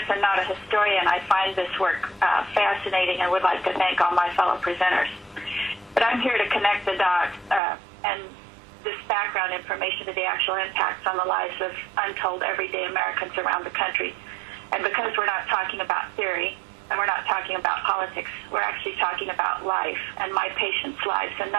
and not a historian, I find this work fascinating and would like to thank all my fellow presenters. But I'm here to connect the dots and this background information to the actual impacts on the lives of untold everyday Americans around the country. And because we're not talking about theory and we're not talking about politics, we're actually talking about life and my patients' lives, and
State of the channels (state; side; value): drops out; left; at 7.6 s